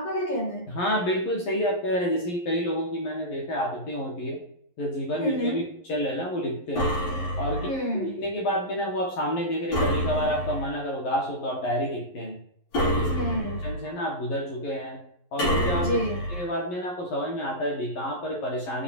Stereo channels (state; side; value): late; right; 11 ms